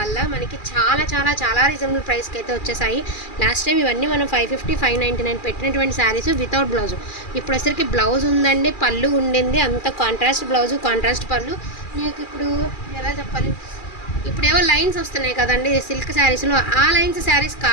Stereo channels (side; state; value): right; late; 2.4 ms